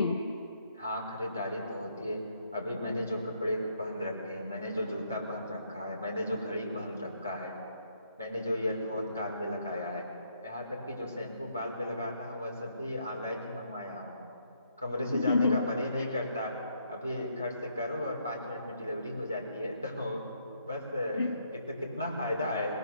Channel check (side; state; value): both; inverted; correlation -0.72